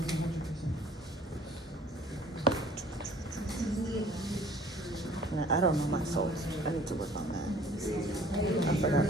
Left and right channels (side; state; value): both; normal; correlation 0.53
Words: I don't know my source. I need to work on that. I forgot